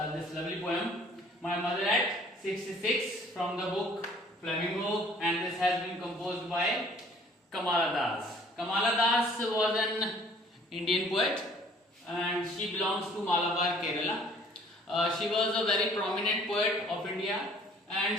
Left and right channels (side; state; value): both; normal; correlation 0.55